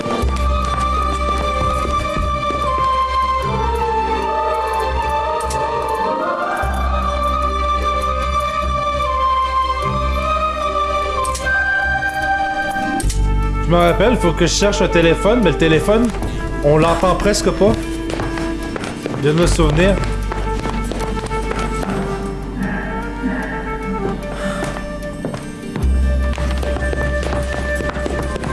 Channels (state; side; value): identical; both; correlation 1.00